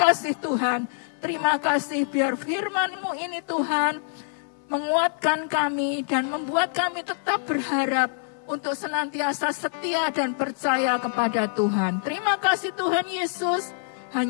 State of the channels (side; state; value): right; silent; digital silence